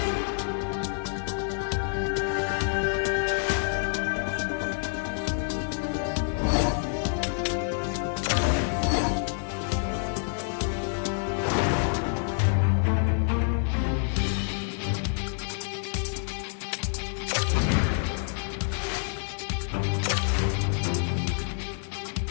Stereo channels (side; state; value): right; silent; 60 dB below the other